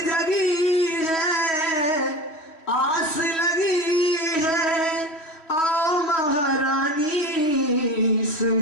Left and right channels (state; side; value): late; right; 3.1 ms